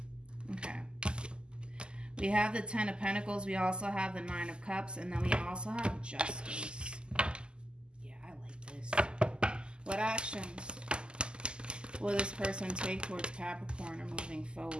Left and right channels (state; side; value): late; left; 0.049 ms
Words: Okay. We have the 10 of Pentacles. We also have the 9 of Cups. And then we also have Justice. Yeah, I like this. What actions will this person take towards Capricorn or moving